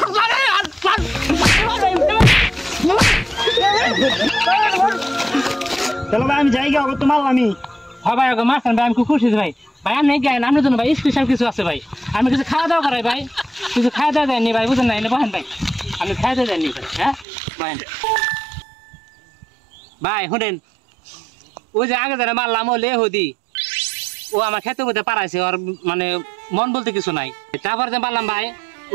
চলো ভাই আমি যাই গা তো মাল আমি হ্যাঁ ভাই ওকে মারছেন ভাই আমি খুব খুশি ভাই ভাই আমি গাই আপনার জন্য ভাই স্পেশাল কিছু আছে ভাই আমি কিছু খাওয়া দাওয়া করাই ভাই কিছু খাওয়া দাওয়া দেয়নি ভাই বুঝেন না এনে বহেন ভাই আমি খাওয়া দাওয়া দেয়নি ভাই হ্যাঁ বহেন ভাই শুনেন ওই যে আগে যারা মারলাম ও লেহুদি ও আমার খেতে বলতে পারাইছে ওর মানে মন বলতে কিছু নাই তারপর যে মারলাম ভাই ও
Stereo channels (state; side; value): drops out; left; at 17.2 s